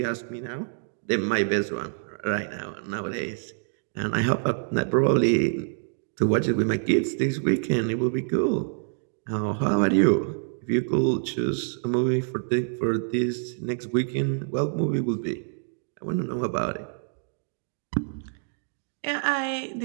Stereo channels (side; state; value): left; silent; digital silence